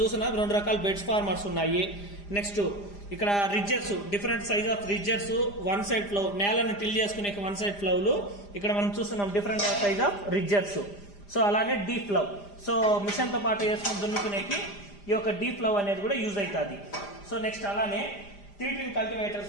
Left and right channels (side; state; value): right; late; 5.0 ms